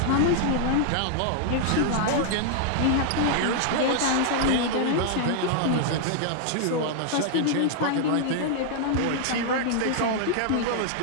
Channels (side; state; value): both; different; correlation -0.01